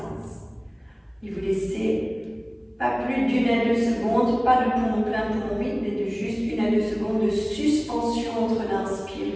Et vous laissez pas plus d'1 à 2 secondes, pas de poumon plein, poumon vide, mais de juste 1 à 2 secondes de suspension entre l'inspire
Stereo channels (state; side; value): identical; both; correlation 1.00